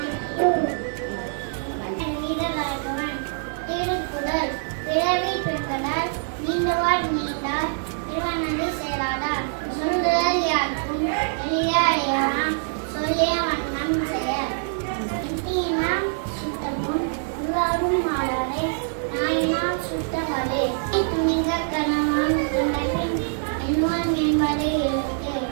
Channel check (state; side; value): silent; left; digital silence